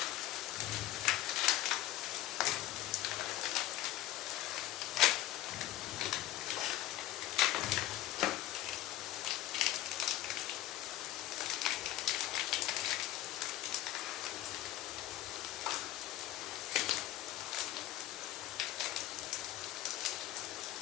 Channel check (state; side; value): quieter; right; 14.5 dB